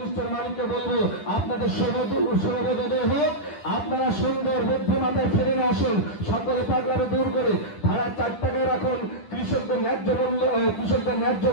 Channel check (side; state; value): right; late; 10 ms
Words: মালিককে বলবো আপনাদের শুভবোধোদয় হোক। আপনারা সুন্দর বুদ্ধিমাতায় ফিরে আসুন, সকলে পাগলারে দূর করে ভাড়া 4 টাকায় রাখুন। কৃষকদের ন্যায্য